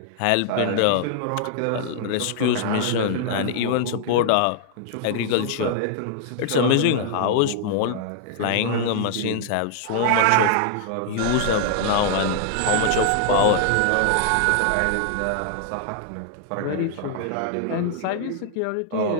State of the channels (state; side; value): different; both; correlation 0.00